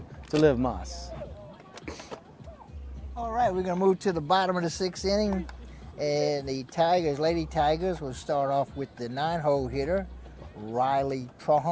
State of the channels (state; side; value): identical; both; correlation 1.00